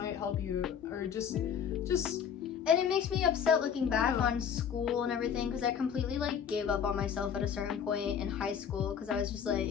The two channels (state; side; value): quieter; right; 7.8 dB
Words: help you, or just and it makes me upset looking back on school and everything, because I completely like gave up on myself at a certain point in high school, because I was just